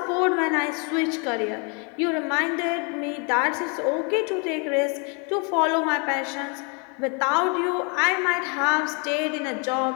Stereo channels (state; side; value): quieter; right; 34.9 dB